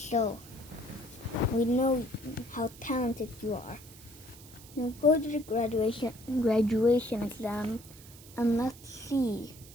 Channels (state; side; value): noise; right; hiss, 20 dB below the sound